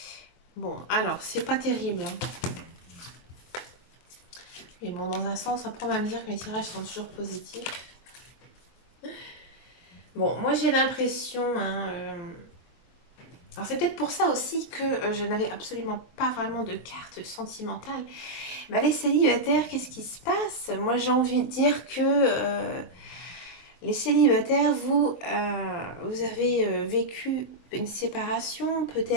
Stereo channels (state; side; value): late; right; 23 ms